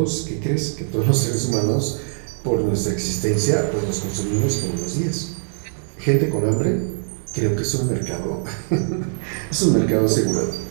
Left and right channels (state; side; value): silent; left; 64 dB below the other